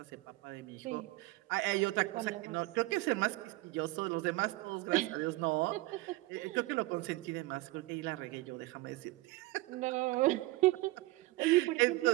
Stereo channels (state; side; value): quieter; left; 20.3 dB